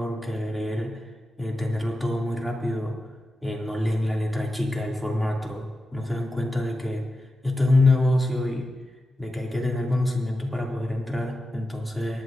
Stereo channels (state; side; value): normal; both; correlation 0.91